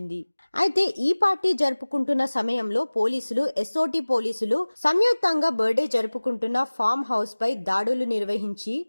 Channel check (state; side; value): inverted; both; correlation -1.00